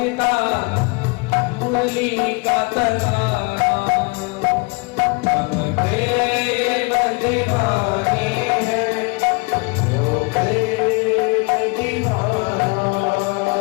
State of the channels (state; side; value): quieter; right; 29.8 dB